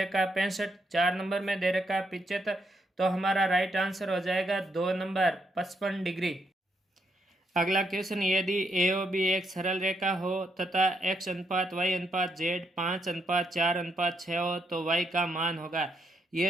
है 65, 4 नंबर में दे रखा है 75, तो हमारा राइट आंसर हो जाएगा 2 नंबर 55 डिग्री। अगला क्वेश्चन, यदि ए ओ बी एक सरल रेखा हो तथा x अनुपात y अनुपात z 5 अनुपात 4 अनुपात 6 हो तो y का मान होगा।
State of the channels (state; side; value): normal; both; correlation 0.78